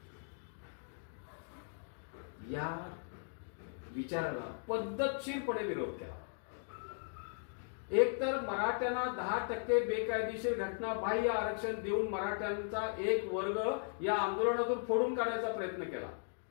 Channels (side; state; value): right; silent; digital silence